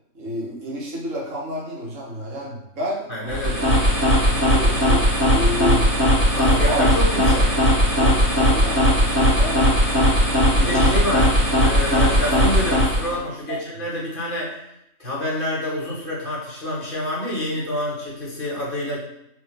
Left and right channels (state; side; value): late; left; 3.2 ms